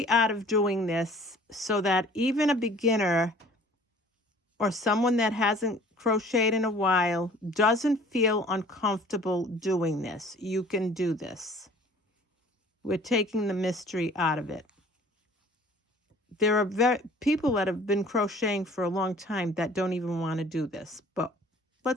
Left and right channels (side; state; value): both; normal; correlation 0.50